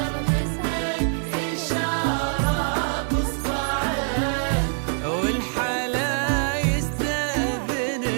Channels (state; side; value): silent; left; 61 dB below the other